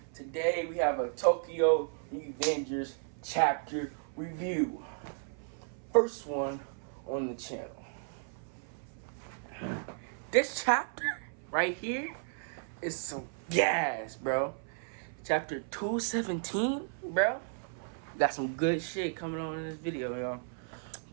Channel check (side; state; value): left; silent; 55 dB below the other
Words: Today we have a Tokyo Revengers chapter review. First one on the channel. This chapter right here is some gas, bro. Chapter 217, bro. Got some good shit coming on in this video, y'all.